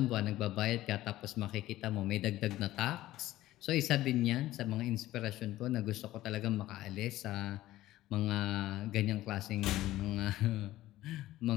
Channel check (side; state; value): right; quieter; 15.5 dB